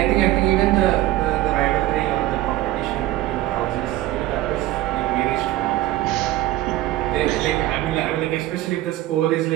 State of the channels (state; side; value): quieter; left; 15.2 dB